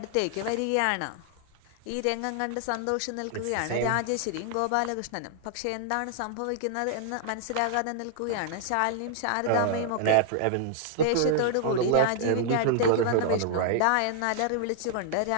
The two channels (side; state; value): both; different; correlation -0.01